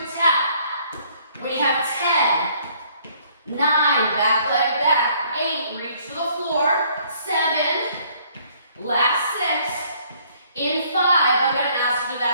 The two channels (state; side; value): inverted; both; correlation -0.62